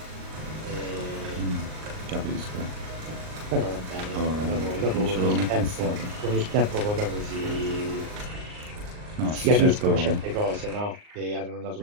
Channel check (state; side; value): late; left; 38 ms